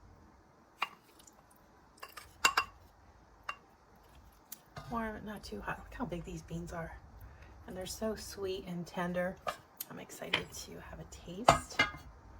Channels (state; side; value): identical; both; correlation 1.00